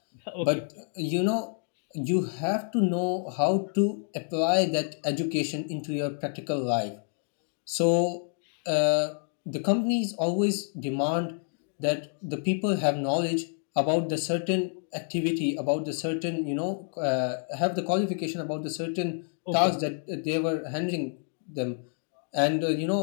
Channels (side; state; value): right; silent; 59 dB below the other